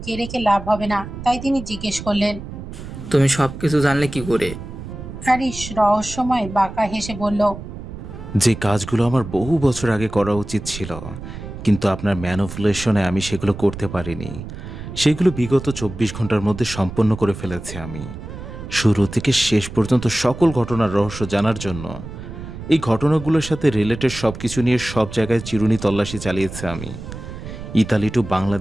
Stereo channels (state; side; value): noise; right; rumble, 11 dB below the sound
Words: রেখে লাভ হবে না, তাই তিনি জিজ্ঞেস করলেন, তুমি সবকিছু জানলে কি করে? হ্যারিস রহস্যময় বাঁকা হেসে বলল, যে কাজগুলো আমার বহু বছর আগে করা উচিত ছিল, কিন্তু আপনার ম্যানিপুলেশনে আমি সেগুলো করতে পারিনি, সেগুলো বিগত 24 ঘন্টার মধ্যে সম্পন্ন করে ফেলেছি আমি। শুরু থেকে শেষ পর্যন্ত সকল ঘটনার রহস্য জানার জন্য এই ঘটনাগুলোর সাথে রিলেটেড সব কিছু নিয়ে সব জায়গায় চিরুনি তল্লাশি চালিয়েছে আমি। ইতালি টু